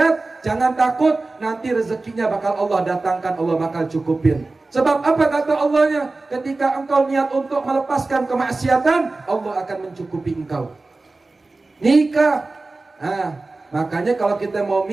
jangan takut, nanti rezekinya bakal Allah datangkan, Allah bakal cukupin. Sebab apa kata Allahnya? Ketika engkau niat untuk melepaskan kemaksiatan, Allah akan mencukupi engkau. Nikah. Makanya kalau kita mau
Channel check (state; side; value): quieter; left; 3.4 dB